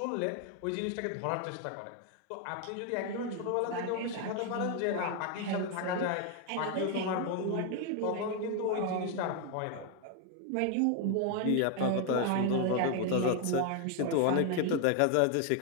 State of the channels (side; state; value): both; different; correlation 0.01